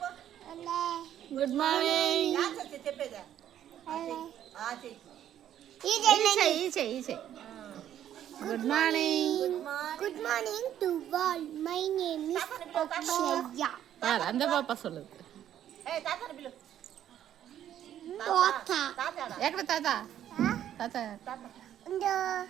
Good morning. ஈச்சை ஈச்சை. Good morning. Good morning to all. My name is Akshaya. அந்த பாப்பா சொல்லுது. தாத்தா. ஏக்கட தாத்தா. தாத்தா. இந்த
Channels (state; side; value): quieter; left; 10.9 dB